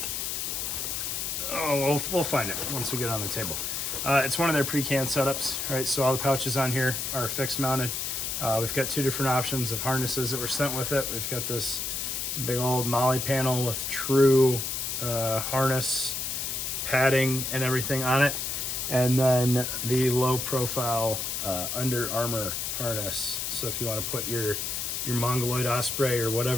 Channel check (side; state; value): left; noise; hiss, 2 dB below the sound